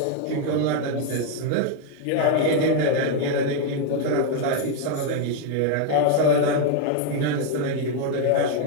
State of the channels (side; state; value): both; different; correlation 0.01